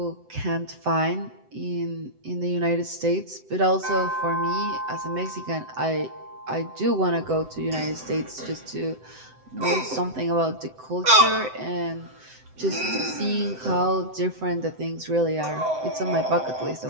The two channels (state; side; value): late; left; 7.8 ms